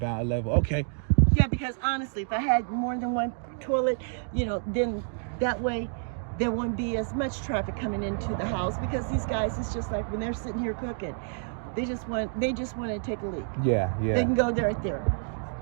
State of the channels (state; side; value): silent; left; digital silence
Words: level. Okay. Yeah, because honestly, if I had more than 1 toilet, you know, then that way there wouldn't be as much traffic coming into the house, because these guys, it's just like when they're sitting here cooking, they just want to take a leak. Yeah. They can go right there.